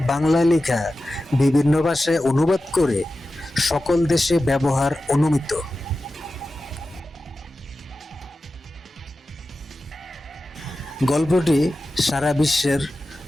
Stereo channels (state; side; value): normal; both; correlation 0.93